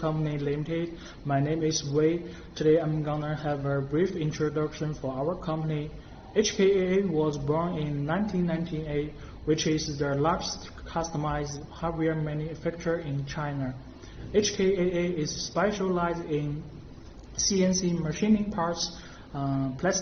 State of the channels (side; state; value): both; identical; correlation 1.00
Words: Limited. My name is Wei. Today I'm gonna have a brief introduction for our company. HKA was born in 1998, which is the largest customized hardware manufacturer in China. HKAA is specialized in CNC machining parts,